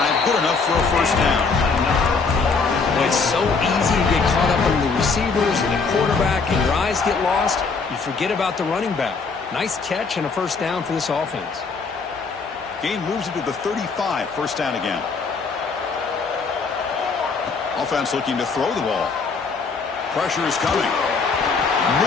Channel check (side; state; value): right; quieter; 4.7 dB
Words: good enough for a first down. Well, it's so easy to get caught up in the receivers and the quarterback, and your eyes get lost. You forget about the running back. Nice catch and a first down for this offense. Game moves into the 35, first down again. Offense looking to throw the ball. Pressure is coming.